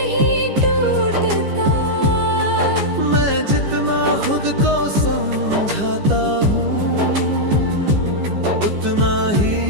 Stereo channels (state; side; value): late; left; 14 ms